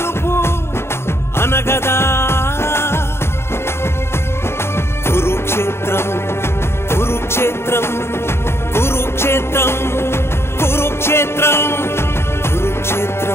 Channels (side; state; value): right; late; 0.12 ms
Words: అనగదా కురుక్షేత్రం కురుక్షేత్రం కురుక్షేత్రం కురుక్షేత్రం